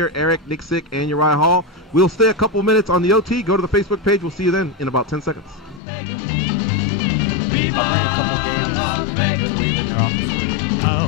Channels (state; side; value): drops out; right; at 5.8 s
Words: Eric Nicksick, and Uriah Hall. We'll stay a couple minutes on the OT. Go to the Facebook page. We'll see you then in about 10 seconds. I'll bring a couple games to leave in your office for you.